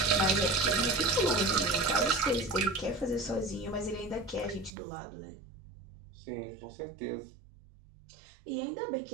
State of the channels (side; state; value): left; drops out; at 4.8 s